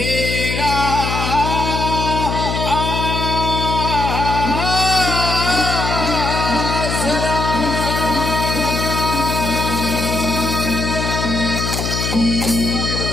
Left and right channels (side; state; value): left; noise; hum, 2 dB below the sound